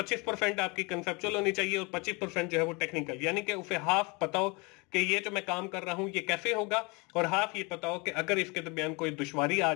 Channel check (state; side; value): quieter; right; 28.5 dB